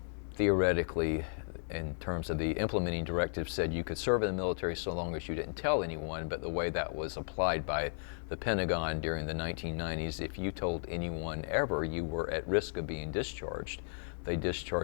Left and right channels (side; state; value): right; silent; digital silence